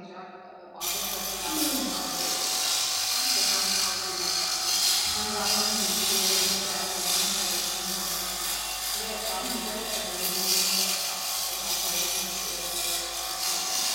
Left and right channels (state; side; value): identical; both; correlation 1.00